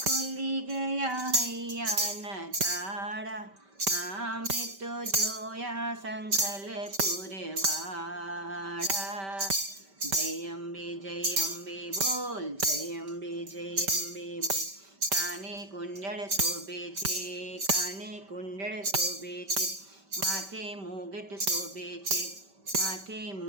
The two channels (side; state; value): left; late; 5.1 ms